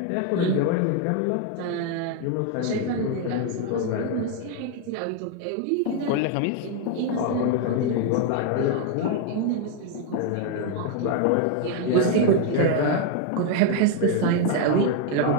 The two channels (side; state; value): both; different; correlation 0.01